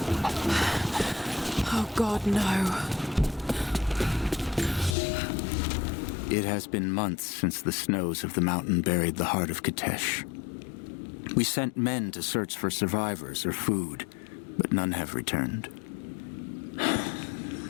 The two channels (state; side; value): drops out; right; at 5.0 s